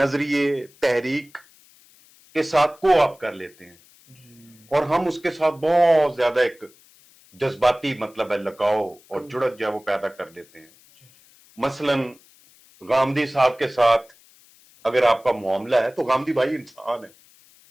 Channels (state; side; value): noise; left; hiss, 28 dB below the sound